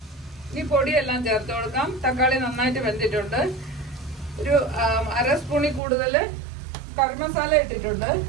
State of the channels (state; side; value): drops out; left; at 5.8 s